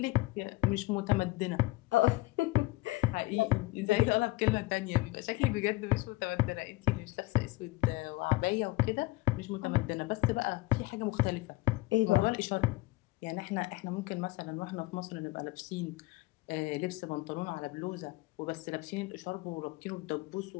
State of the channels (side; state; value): right; quieter; 20.6 dB